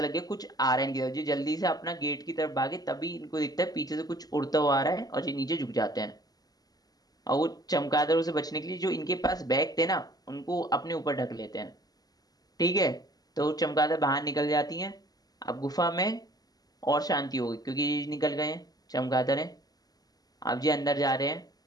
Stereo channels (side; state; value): right; late; 0.18 ms